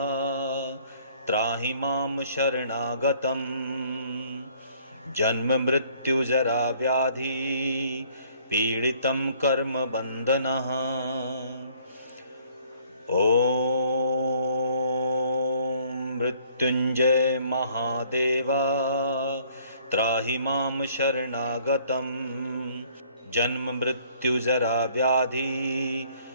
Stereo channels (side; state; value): both; inverted; correlation -0.60